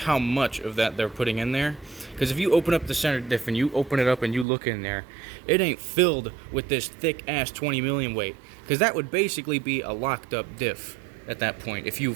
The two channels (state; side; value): drops out; left; at 4.5 s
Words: much of that they're putting in there. Because if you open up the center diff and you open it up and you look in there, it ain't filled with this thick ass 20 million weight. Because that would basically be a locked up diff at that point if you